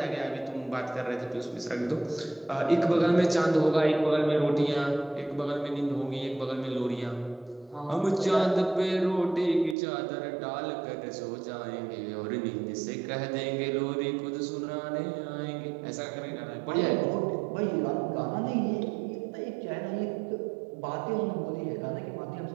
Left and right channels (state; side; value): drops out; left; at 9.8 s